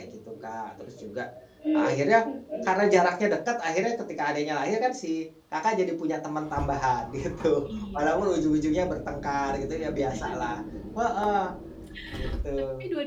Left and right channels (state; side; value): identical; both; correlation 1.00